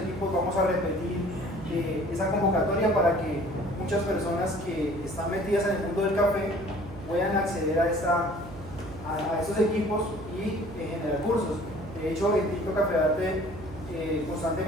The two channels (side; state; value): right; noise; hum, 14 dB below the sound